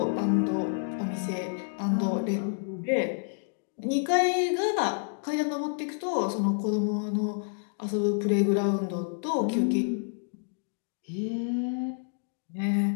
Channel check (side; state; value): right; silent; digital silence